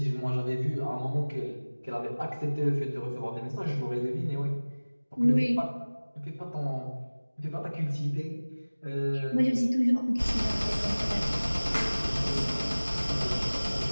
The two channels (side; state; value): both; inverted; correlation -1.00